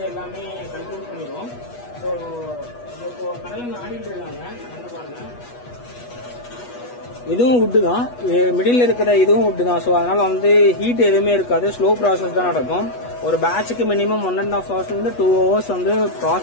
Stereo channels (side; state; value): right; late; 8.2 ms